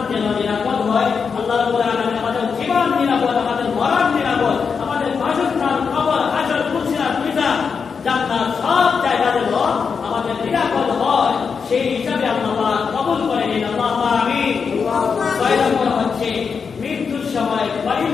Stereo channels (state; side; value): quieter; right; 5.8 dB